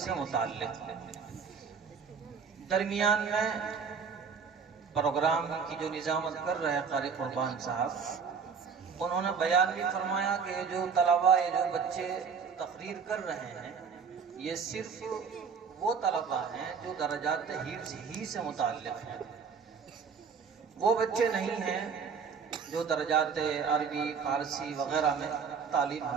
متعلق، درمیان میں پروگرام کی جو نظامت کر رہے قاری قربان صاحب، انہوں نے بیان بھی فرمایا کہ جو طلباء جو بچے تقریر کر رہے ہیں یہ صرف وہ طلباء ہیں جو درجات حفظ ہی سے متعلق ہیں، وہ بچے نہیں ہیں جو درجات عربی فارسی وغیرہ میں تعلیم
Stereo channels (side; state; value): left; quieter; 6.1 dB